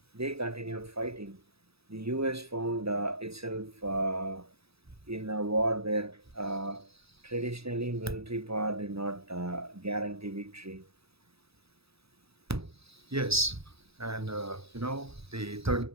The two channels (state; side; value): late; left; 0.77 ms